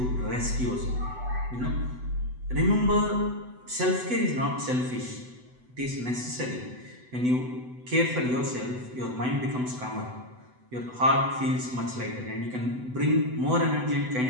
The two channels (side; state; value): left; late; 8.0 ms